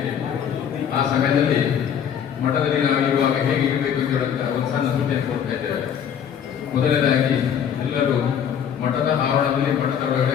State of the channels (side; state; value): right; quieter; 8.4 dB